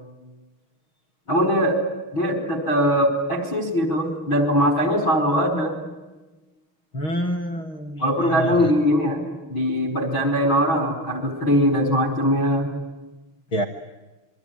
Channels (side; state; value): right; late; 6.4 ms